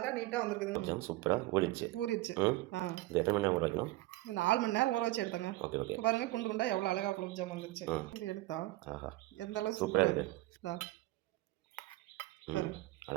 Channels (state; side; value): quieter; left; 18.3 dB